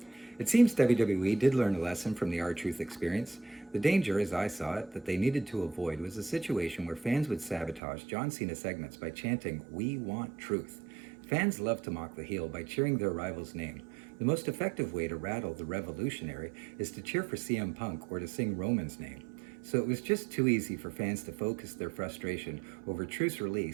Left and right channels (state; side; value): drops out; left; at 7.8 s